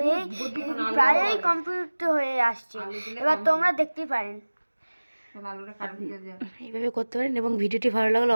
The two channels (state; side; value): inverted; both; correlation -1.00